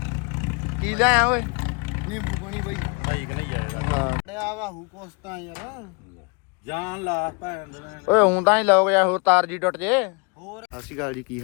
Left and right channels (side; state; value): right; quieter; 32.2 dB